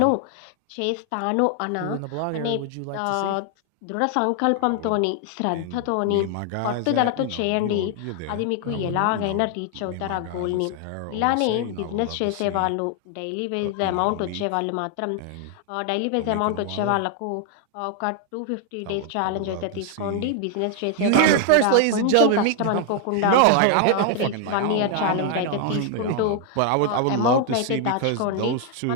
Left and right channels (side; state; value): both; different; correlation 0.00